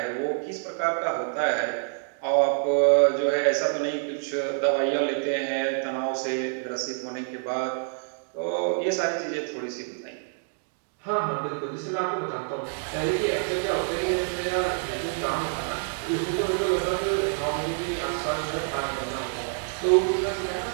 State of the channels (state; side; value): silent; left; 60 dB below the other